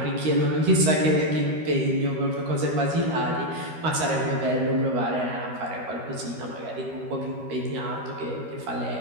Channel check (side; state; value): left; late; 13 ms